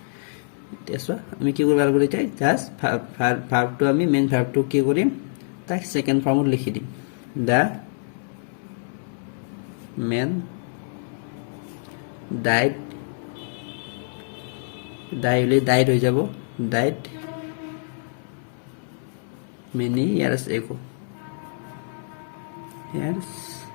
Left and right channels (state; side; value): silent; right; digital silence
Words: তেছো আমি কি কৰিব লাগিব এতিয়া জাস্ট verb টো আমি মেইন verb টো কি কৰিম তাক সেকেন্ড ফর্মত লিখি দিম the man died died হৈ যাব died many years